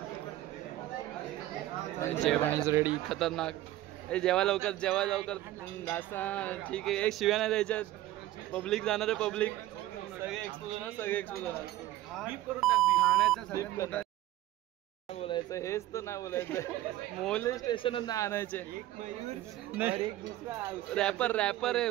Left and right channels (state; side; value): quieter; left; 15.1 dB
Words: रेडी. खतरनाक. जेव्हा लवकर नाश्ता ठीक आहे. एक शिव्या नाही द्यायच्या. पब्लिक जाणार आहे. पब्लिक सगळे एक्सपोज होणार. नाही बोलायचं. हेच तर नाही बोलायचं. मोले स्टेशनच नाही आणायचे. नाही रॅपर आहे